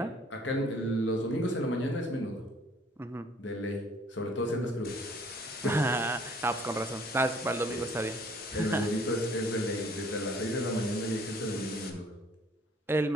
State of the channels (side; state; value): both; normal; correlation 0.57